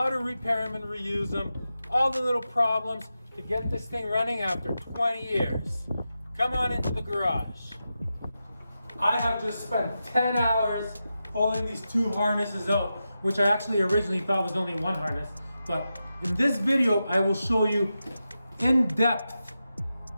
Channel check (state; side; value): inverted; both; correlation -0.90